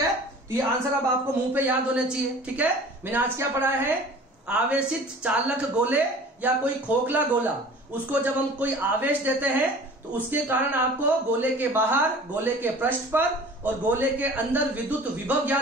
तो ये आंसर अब आपको मुंह पे याद होने चाहिए, ठीक है। मैंने आज क्या पढ़ा है, आवेशित चालक गोले या कोई खोखला गोला, उसको जब हम कोई आवेश देते हैं तो उसके कारण आपको गोले के बाहर, गोले के पृष्ठ पर और गोले के अंदर विद्युत विभव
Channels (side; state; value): both; normal; correlation 0.44